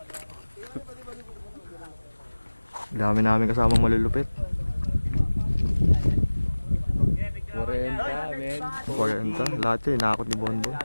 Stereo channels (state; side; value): inverted; both; correlation -1.00